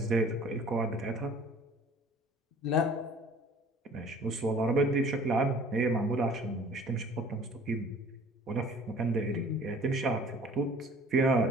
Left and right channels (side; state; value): both; normal; correlation 0.49